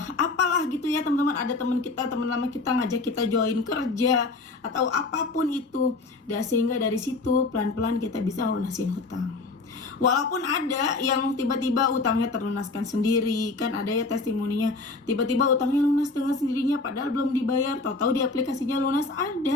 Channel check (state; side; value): quieter; right; 3.6 dB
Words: apalah gitu ya teman-teman, ada teman lama kita ngajak kita join kerja atau apapun itu. Dan sehingga dari situ pelan-pelan kita bisa lunasin hutang. Walaupun ada yang tiba-tiba utangnya terlunaskan sendiri, kan ada ya testimoninya, tiba-tiba utangnya lunas dengan sendirinya padahal belum dibayar, tahu-tahu di aplikasinya lunas,